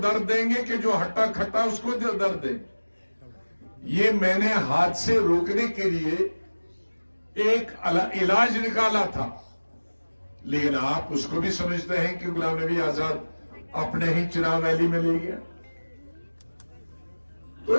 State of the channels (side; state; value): both; inverted; correlation -1.00